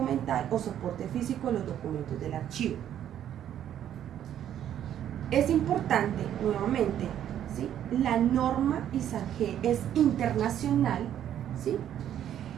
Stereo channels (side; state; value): left; quieter; 10.5 dB